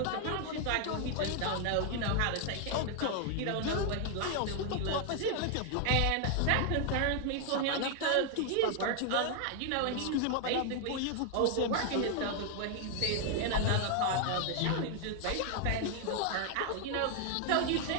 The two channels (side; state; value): both; different; correlation 0.00